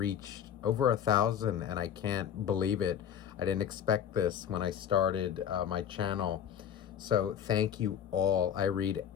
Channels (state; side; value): quieter; right; 9.0 dB